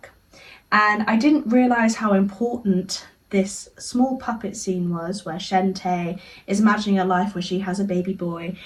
And I didn't realise how important this small puppet scene was, where Shantae is imagining a life where she has a baby boy,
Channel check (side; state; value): both; identical; correlation 1.00